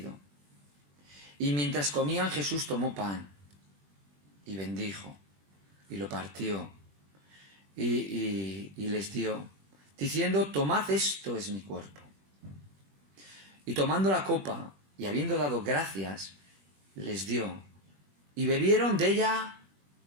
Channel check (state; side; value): late; left; 21 ms